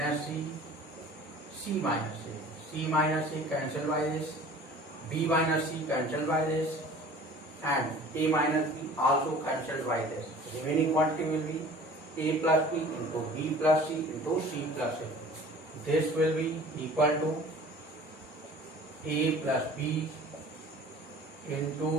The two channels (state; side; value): normal; both; correlation 0.46